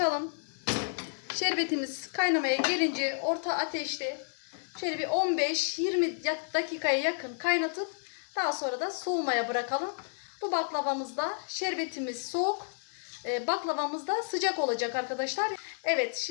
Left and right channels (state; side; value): silent; right; digital silence